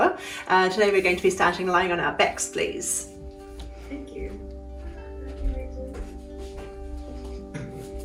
Today we're going to be starting lying on our backs, please. Thank you.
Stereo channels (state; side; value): identical; both; correlation 1.00